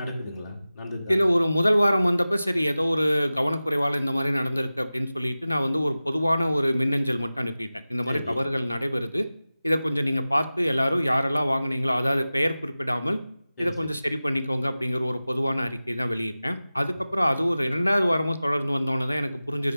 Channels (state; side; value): inverted; both; correlation -0.96